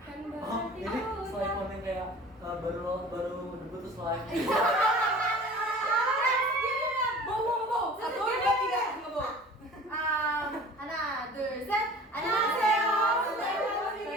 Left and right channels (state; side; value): normal; both; correlation 0.43